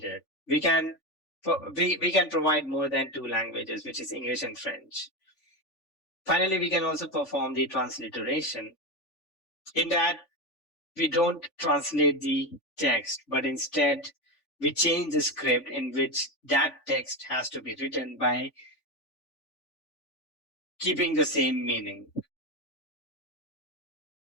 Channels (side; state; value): right; late; 3.5 ms